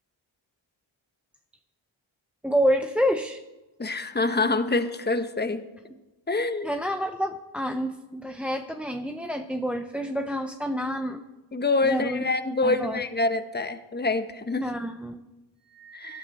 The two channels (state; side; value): normal; both; correlation 0.39